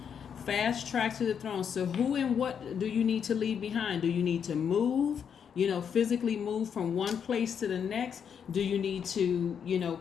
Fast-tracked to the throne. So who and what do you need to leave behind? Do you need to move, physically move from one place to the next? Do you need to,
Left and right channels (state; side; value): quieter; right; 7.5 dB